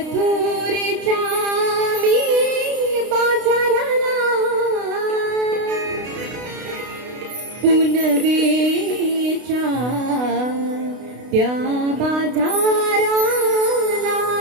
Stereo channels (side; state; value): left; late; 32 ms